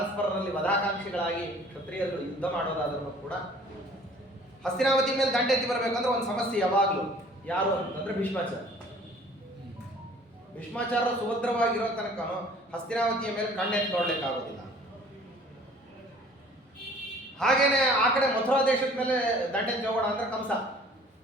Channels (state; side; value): normal; both; correlation 0.52